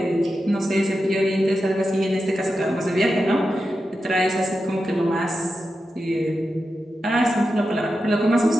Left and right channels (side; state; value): both; normal; correlation 0.90